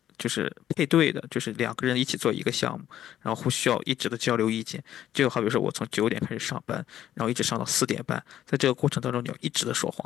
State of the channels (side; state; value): right; quieter; 11.6 dB